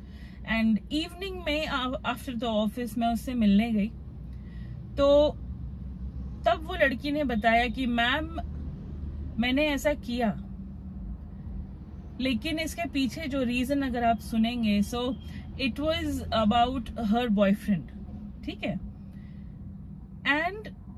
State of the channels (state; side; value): identical; both; correlation 1.00